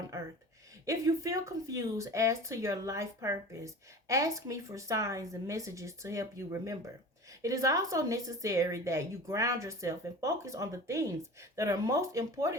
earth. If you feel confused as to your life purpose, ask me for signs and messages to help you remember. It is also necessary that you ground yourself and focus on the things that are most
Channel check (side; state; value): both; normal; correlation 0.37